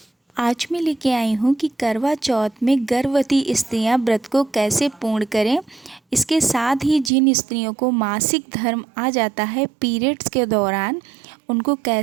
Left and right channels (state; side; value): drops out; left; at 7.1 s